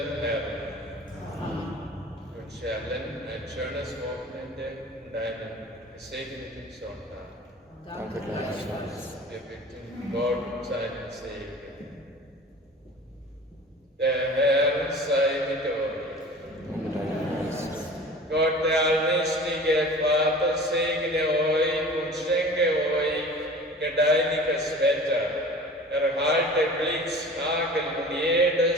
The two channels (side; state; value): both; normal; correlation 0.41